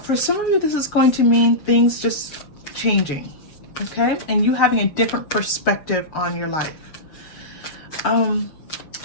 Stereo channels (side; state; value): right; late; 6.6 ms